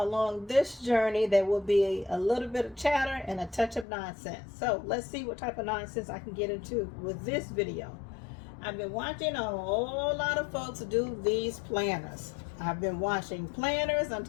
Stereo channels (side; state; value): right; drops out; at 3.9 s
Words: this journey, there will be a little bit of chatter and a touch of nonsense. So let's see what type of nonsense I can get into with this video. I've been watching a whole lot of folks do these planners. I've been watching planners on